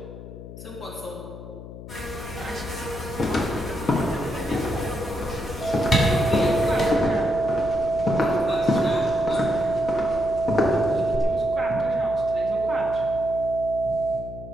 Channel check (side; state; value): left; noise; hum, 13 dB below the sound